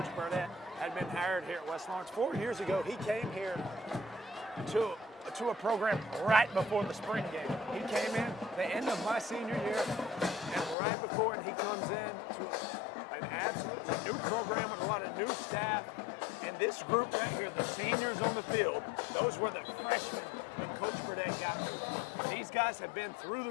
Burdett had been hired here at West Lawrence. 4 years ago, he came here to a program right before the spring game. He came in the end of my senior year, and right before, and he comes in to an absolutely new program with a lot of new staff. And this group right here, the seniors on the field, those were the freshmen when Coach Burdett got here. These guys have been through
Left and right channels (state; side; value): drops out; right; at 10.8 s